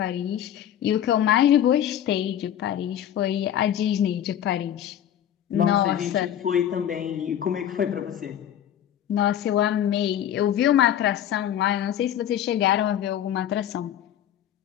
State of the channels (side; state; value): right; quieter; 10.6 dB